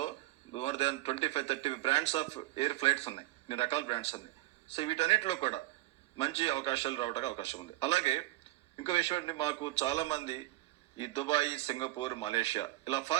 more than 25-30 brands of air flights ఉన్నాయి, ఇన్ని రకాల బ్రాండ్స్ ఉన్నాయి. సో వీటన్నిటిలో కూడా మంచి అవకాశాలు రావడానికి అవకాశం ఉంది. అలాగే ఇంకో విషయం అండి, మాకు చాలా మంది ఈ దుబాయ్, సింగపూర్, మలేషియా ఇలా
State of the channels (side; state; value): left; quieter; 18.1 dB